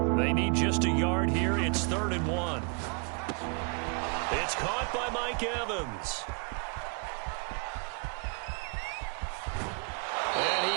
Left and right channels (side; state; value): left; quieter; 35.9 dB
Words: They need just a yard here. It's 3rd and 1. It's caught by Mike Evans. And